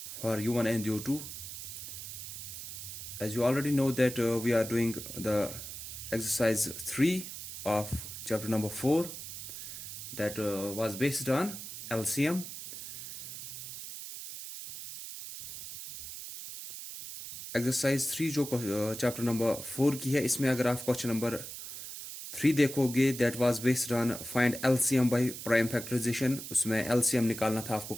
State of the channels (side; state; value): right; noise; hiss, 9 dB below the sound